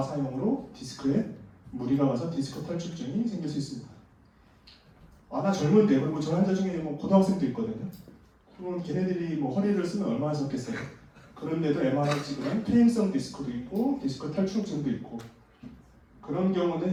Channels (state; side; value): identical; both; correlation 1.00